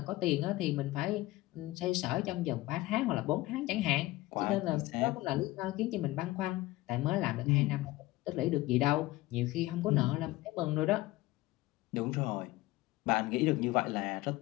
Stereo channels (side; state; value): right; quieter; 18.6 dB